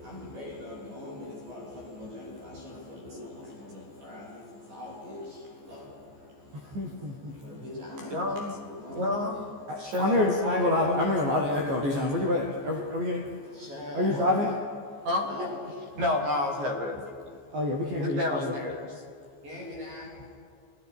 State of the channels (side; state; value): left; late; 14 ms